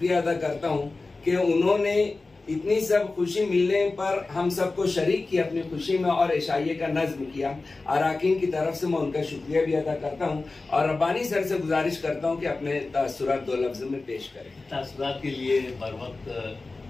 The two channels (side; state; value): right; quieter; 3.5 dB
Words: अदा करता हूँ कि उन्होंने इतनी सब खुशी मिलने पर हम सबको शरीक किया अपनी खुशी में और इशाइये का नज्म किया। अराकीन की तरफ से मैं उनका शुक्रिया भी अदा करता हूँ और रब्बानी सर से गुजारिश करता हूँ कि अपने तासुरात 2 लफ्ज़ों में पेश करें। तासुरात के लिए बर